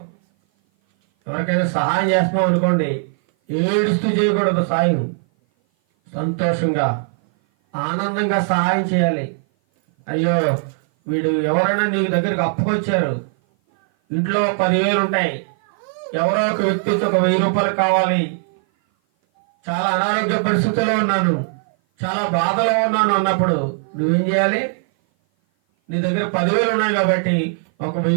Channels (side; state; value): left; silent; 56 dB below the other